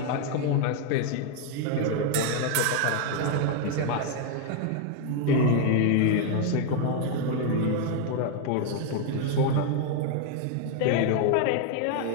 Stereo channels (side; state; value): both; different; correlation 0.01